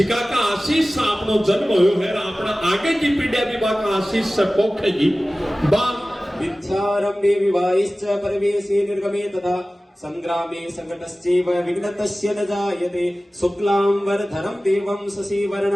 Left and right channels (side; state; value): both; normal; correlation 0.97